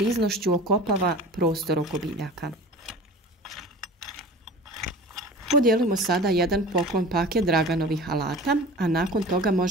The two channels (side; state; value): both; normal; correlation 0.38